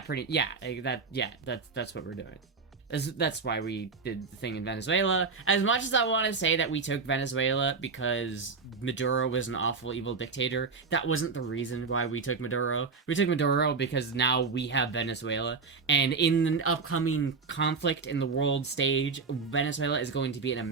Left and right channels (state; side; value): quieter; left; 4.8 dB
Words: that's what we're doing. That's why we did the thing in Venezuela. As much as I want to say that we took Venezuela because Maduro was an awful, evil dictator, that wasn't the reason why we took Maduro. We took Maduro because now we have Venezuela. And in an upcoming conflict in the world stage, Venezuela is going to be an